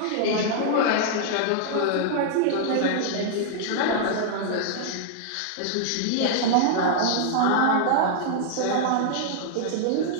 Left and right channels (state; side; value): different; both; correlation -0.01